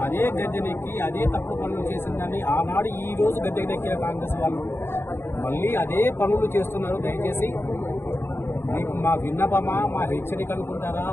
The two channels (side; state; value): right; late; 0.11 ms